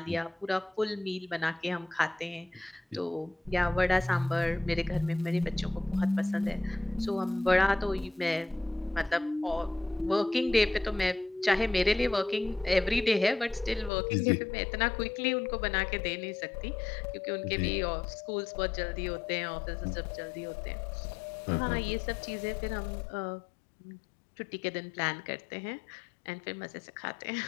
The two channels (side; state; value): right; drops out; at 13.9 s